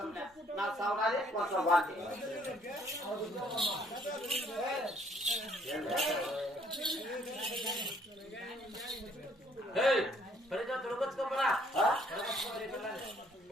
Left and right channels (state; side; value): normal; both; correlation 0.64